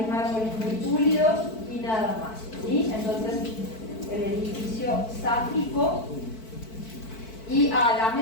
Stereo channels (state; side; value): late; right; 4.5 ms